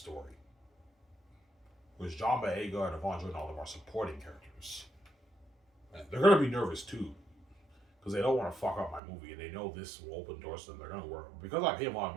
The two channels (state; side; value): drops out; left; at 9.0 s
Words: Whereas John Boyega and Yvonne Joy and all of them are supporting characters. And they're gonna be nervous too, because they don't want to fuck up my movie, and they know this will open doors to them. They're gonna work because I pay them a lot of